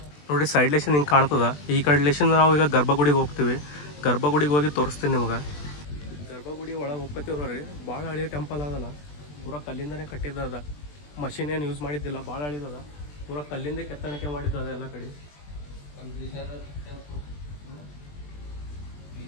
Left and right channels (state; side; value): late; right; 20 ms